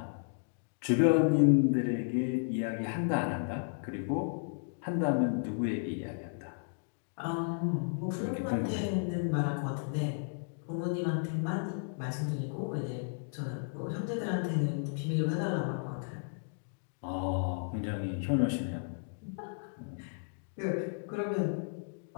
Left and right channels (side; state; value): right; silent; digital silence